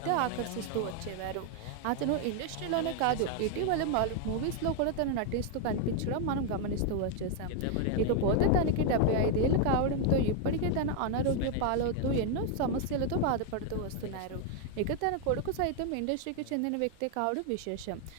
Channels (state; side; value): different; both; correlation 0.01